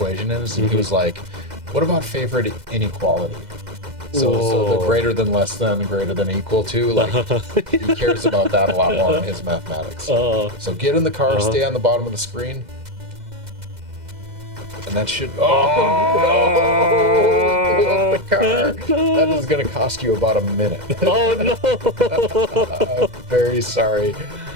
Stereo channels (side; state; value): left; late; 2.0 ms